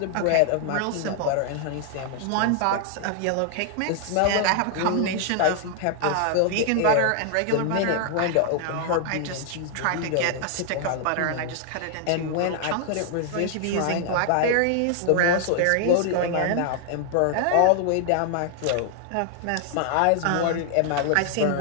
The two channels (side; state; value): both; different; correlation 0.00